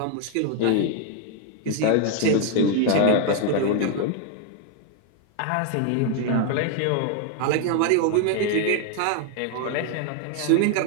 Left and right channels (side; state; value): both; different; correlation 0.00